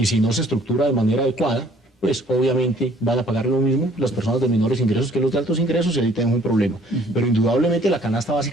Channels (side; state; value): both; normal; correlation 0.58